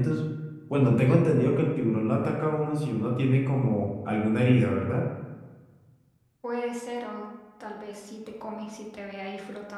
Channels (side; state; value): both; identical; correlation 1.00